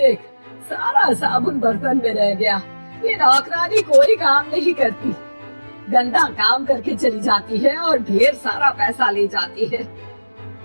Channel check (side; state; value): both; inverted; correlation -1.00